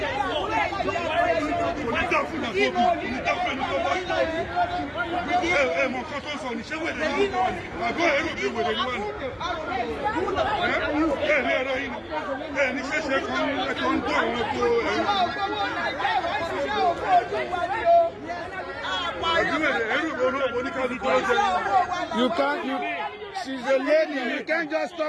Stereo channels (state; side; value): identical; both; correlation 1.00